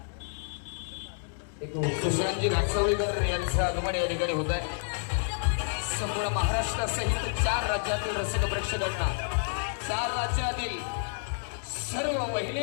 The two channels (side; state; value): right; silent; digital silence